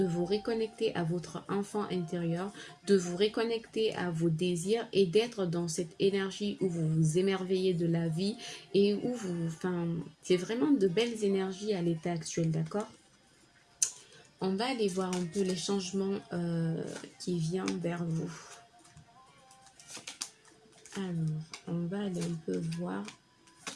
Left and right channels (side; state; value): both; identical; correlation 1.00